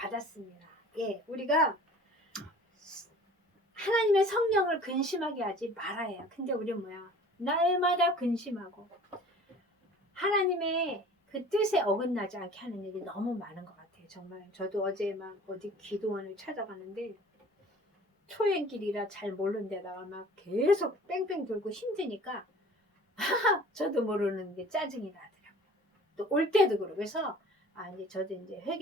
예, 우리가 하나님의 성령을 근심하게 하지 말아야. 근데 우리 뭐야? 날마다 근심하고 하나님의 그 뜻에 어긋나지 않게 하는 일이 너무 많은 것 같아요. 정말 저도 어제 막 어디 기도원을 찾아가는데 초행길이라 잘 모르는 데다가 막 계속 뺑뺑 돌고 힘드니까 저도 모르는 게 짜증이 나더라고요. 또 올 때도 그러고. 그래서 이제 저도 이제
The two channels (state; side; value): normal; both; correlation 0.46